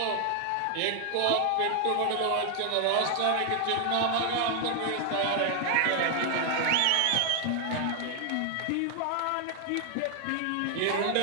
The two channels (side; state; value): both; different; correlation 0.00